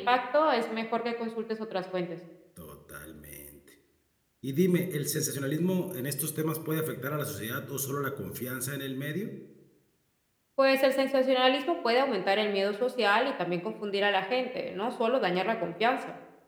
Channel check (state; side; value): identical; both; correlation 1.00